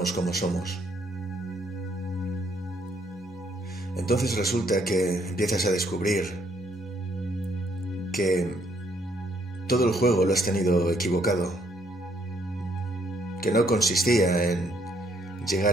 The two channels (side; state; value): both; normal; correlation 0.69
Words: como somos. Entonces resulta que empiezas a descubrir que todo el juego lo has tenido equivocado, que no consistía en